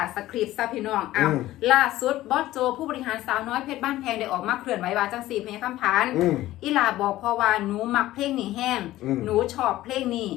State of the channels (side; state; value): right; quieter; 15.5 dB